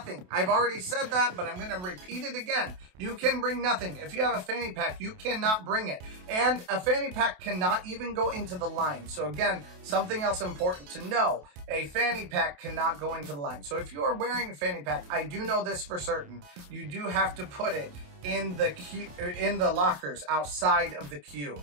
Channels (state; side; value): late; left; 28 ms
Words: I've already said that, but I'm going to repeat it again. You can bring nothing. If you have a fanny pack, you cannot bring it. And a fanny pack cannot even go into the line. So again, something else important to know. A fanny pack cannot go into the line. So if you are wearing a fanny pack, I do know this for certain, you do have to put it in the queue, in the lockers outside of the queue.